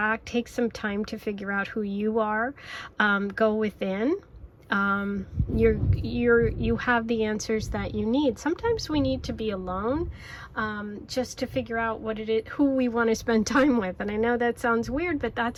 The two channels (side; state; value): both; identical; correlation 1.00